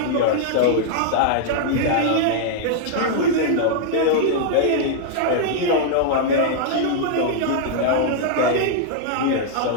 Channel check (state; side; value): different; both; correlation -0.01